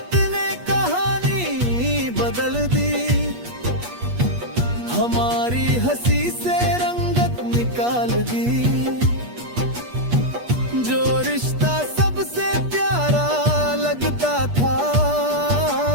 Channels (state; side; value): late; left; 8.3 ms